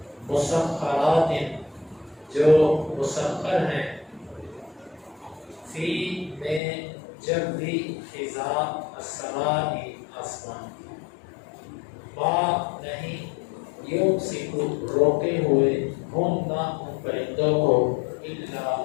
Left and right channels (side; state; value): right; drops out; at 6.6 s